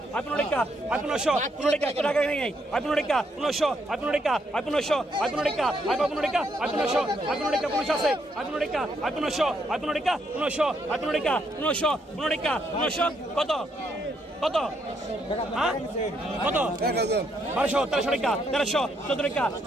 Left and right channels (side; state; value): both; normal; correlation 0.75